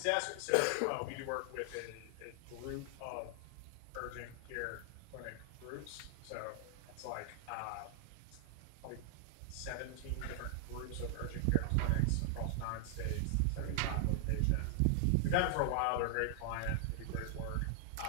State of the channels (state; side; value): different; both; correlation 0.00